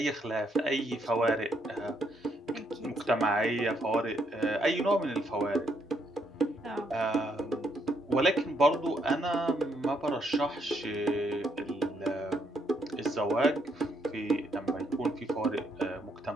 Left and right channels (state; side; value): normal; both; correlation 0.73